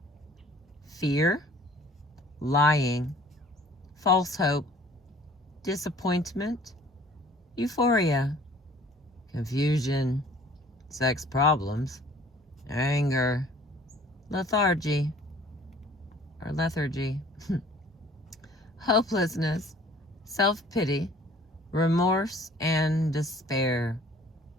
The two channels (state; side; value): normal; both; correlation 0.52